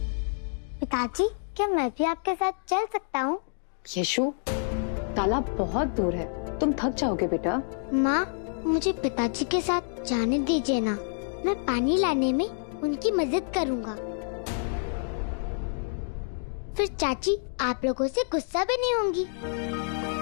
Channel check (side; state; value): right; silent; digital silence